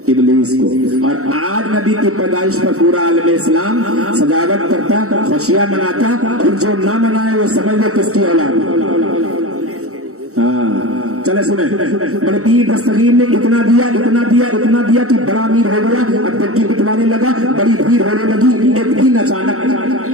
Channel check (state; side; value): late; left; 0.64 ms